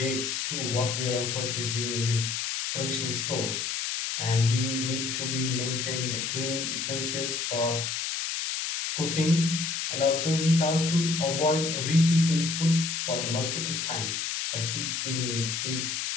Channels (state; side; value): noise; left; hiss, 2 dB below the sound